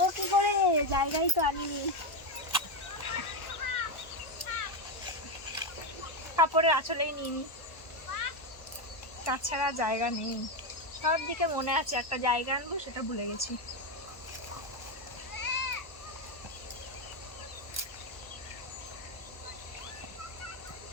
কি করে, জায়গায় তো আনিনি। কাপড়ের আঁচলেই নিইনি, তাছাড়া জায়গা নেই। সব দিকে মনে আছে একটা জায়গা আনবো, সেটা ভুলে গেছি।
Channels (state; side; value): late; right; 1.1 ms